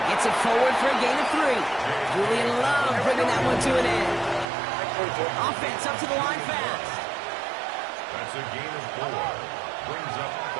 Gets it forward for a gain of 3. Julian Love bringing that one to an end. Offense up to the line fast. That's a gain of 4. Brings up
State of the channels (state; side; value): drops out; left; at 4.5 s